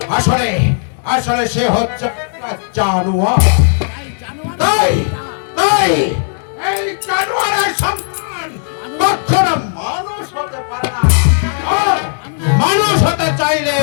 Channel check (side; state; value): right; silent; digital silence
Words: আসলে আসলে সে হচ্ছে জানোয়ার। তাই তাই এই জানোয়ারের সন্তান কখনো মানুষ হতে পারে না, আর মানুষ হতে